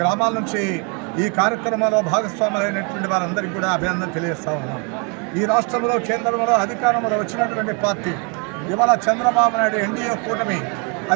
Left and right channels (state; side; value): quieter; left; 34.8 dB